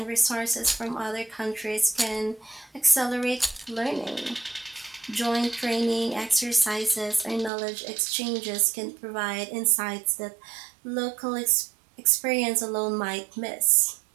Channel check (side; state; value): left; drops out; at 7.5 s